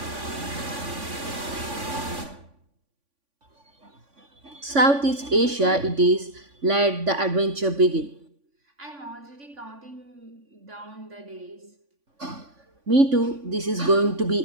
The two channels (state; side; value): late; left; 3.5 ms